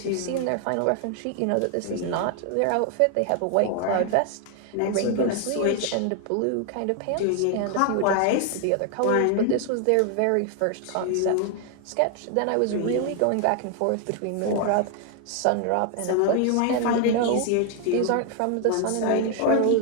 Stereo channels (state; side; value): different; both; correlation 0.00